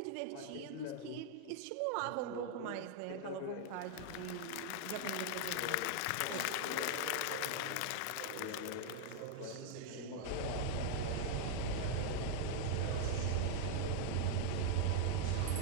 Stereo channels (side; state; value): both; different; correlation 0.00